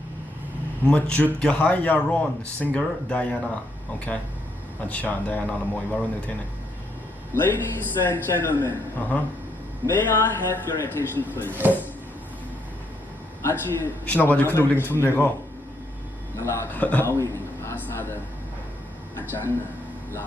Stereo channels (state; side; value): normal; both; correlation 0.75